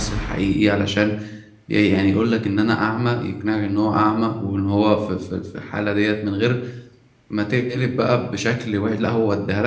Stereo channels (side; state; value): both; identical; correlation 1.00